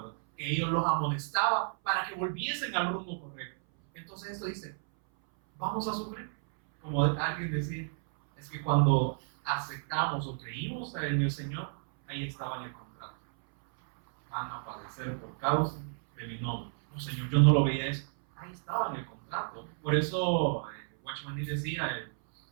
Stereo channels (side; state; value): left; silent; 57 dB below the other